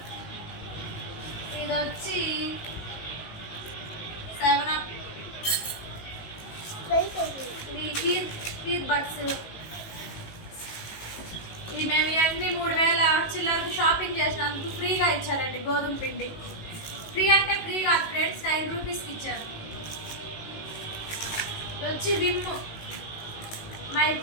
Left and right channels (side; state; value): right; late; 19 ms